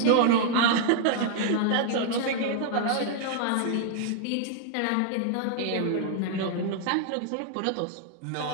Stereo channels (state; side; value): different; both; correlation 0.00